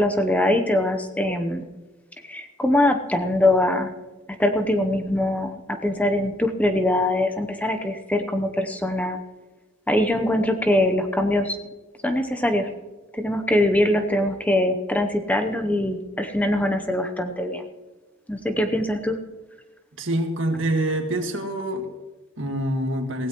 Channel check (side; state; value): both; normal; correlation 0.70